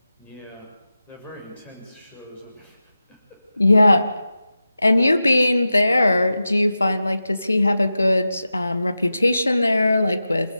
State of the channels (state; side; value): inverted; both; correlation -0.93